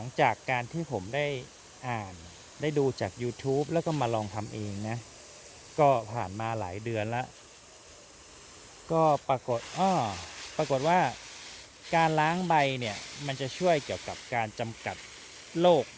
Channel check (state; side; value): identical; both; correlation 1.00